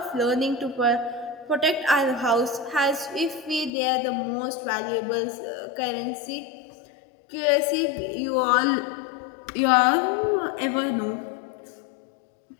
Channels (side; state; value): right; drops out; at 3.7 s